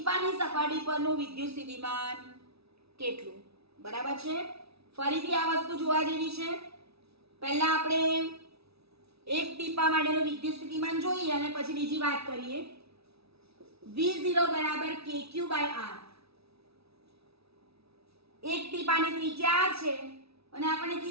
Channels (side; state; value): left; late; 0.77 ms